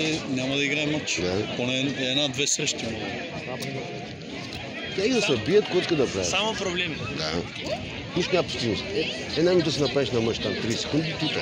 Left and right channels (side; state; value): both; identical; correlation 1.00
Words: няма да играе матч. Поне една-две срещи. Тя и да се бият, кой иска да прави. Само проблеми. Да. Нищо няма постигност. Една минута си направиш на мъж там 30 секунди, тута.